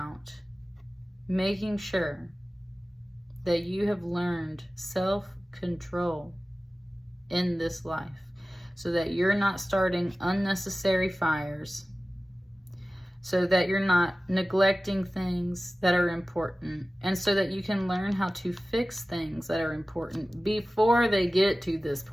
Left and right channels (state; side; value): normal; both; correlation 0.96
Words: making sure that you have learned self-control in this life, so that you're not starting unnecessary fires, so that you're not neglecting things that are important, and so that you can learn how to fix things that are important before they get to this